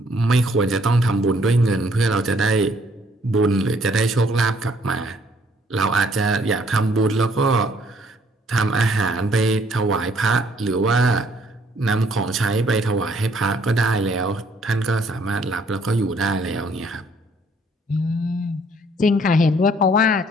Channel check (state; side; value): normal; both; correlation 0.63